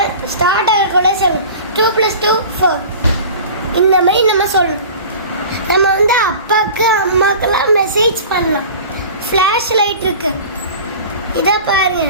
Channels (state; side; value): inverted; both; correlation -0.39